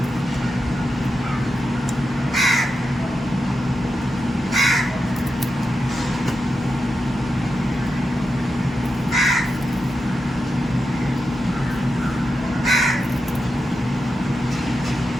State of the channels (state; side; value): normal; both; correlation 0.89